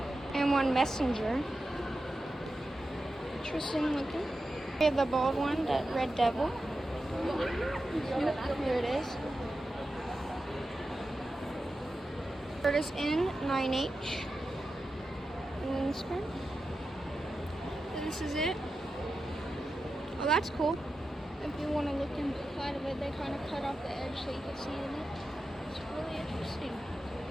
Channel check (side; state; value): both; normal; correlation 0.91